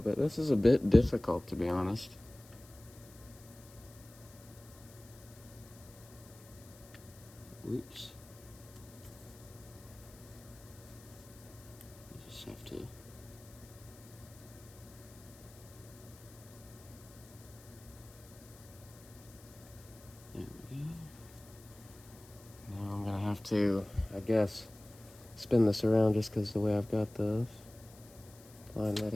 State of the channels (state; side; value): noise; left; hiss, 22 dB below the sound